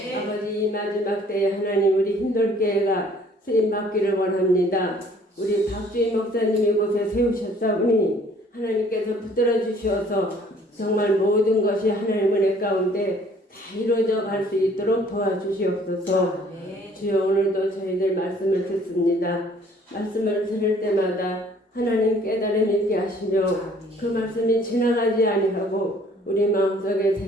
아버지 이 마지막 때에 하나님 우리 흰돌교회가 쓰임받기를 원합니다. 우리 박주희 목사님 이곳에 세우셨사오니 하나님께서 붙들어 주셔서 정말 모든 것이 하나님 은혜 가운데 다 이루어져 갈 수 있도록 도와주시옵소서. 주여 오늘도 저희들 말씀을 듣습니다. 말씀을 들을 때마다 하나님 깨달음 있게 하시며 그 말씀이 지나가지 아니하고 우리 마음속에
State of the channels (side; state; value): both; normal; correlation 0.57